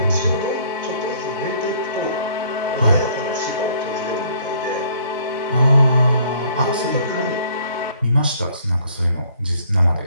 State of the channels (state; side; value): inverted; both; correlation -0.60